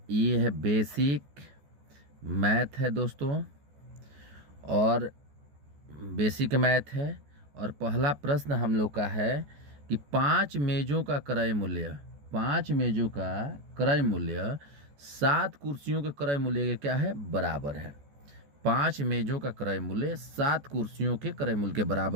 ये है बेसिक मैथ है दोस्तों, और बेसिक मैथ है। और पहला प्रश्न हम लोग का है कि 5 मेज़ों का क्रय मूल्य, 5 मेज़ों का क्रय मूल्य 7 कुर्सियों के क्रय मूल्य के क्या है, बराबर है। 5 मेज़ों का क्रय मूल्य 7 कुर्सियों के क्रय मूल्य के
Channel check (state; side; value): late; left; 14 ms